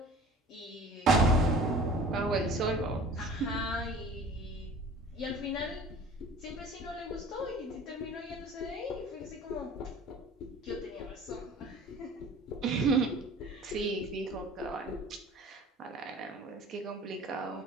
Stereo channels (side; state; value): both; normal; correlation 0.45